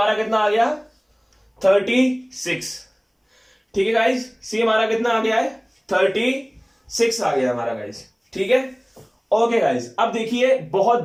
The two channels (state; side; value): identical; both; correlation 1.00